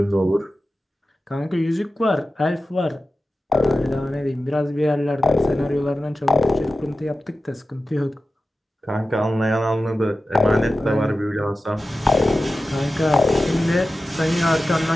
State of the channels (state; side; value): normal; both; correlation 0.94